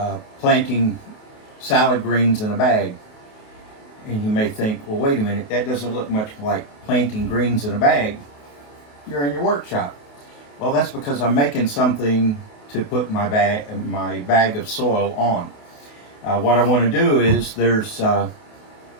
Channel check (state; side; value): late; right; 28 ms